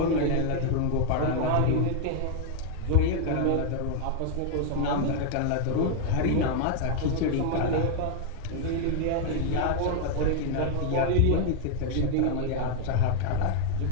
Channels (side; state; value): both; different; correlation 0.00